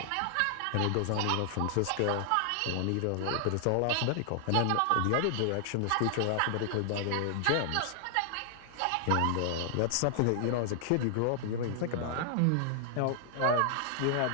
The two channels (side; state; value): both; different; correlation -0.01